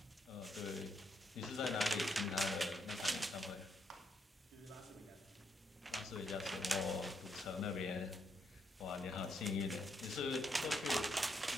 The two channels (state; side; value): normal; both; correlation 0.77